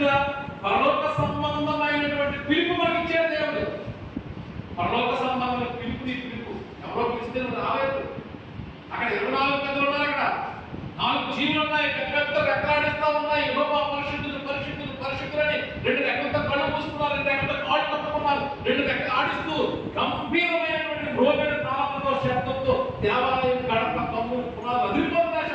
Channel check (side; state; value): both; identical; correlation 1.00